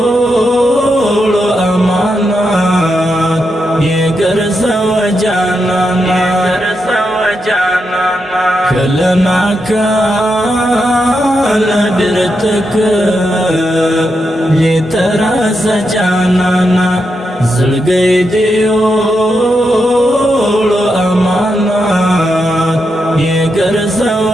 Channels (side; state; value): both; normal; correlation 0.84